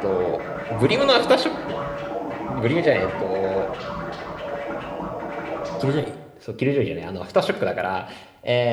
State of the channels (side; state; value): both; identical; correlation 1.00